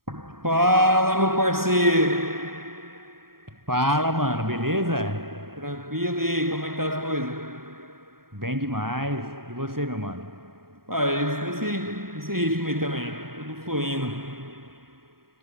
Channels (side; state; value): left; late; 0.93 ms